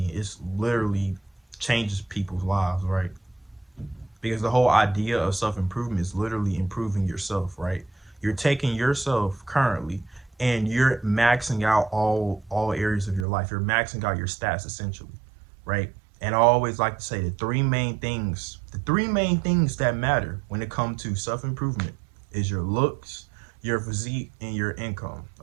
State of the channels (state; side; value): drops out; left; at 13.2 s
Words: it's literally changes people's lives, right? Because the whole idea of self improvement is literally improving yourself, right? You're taking yourself currently and you're maxing out all areas of your life. You're maxing out your stats essentially, right? And I always like to say the three main things that matter when it comes to self improvement is your looks, your physique, and your income.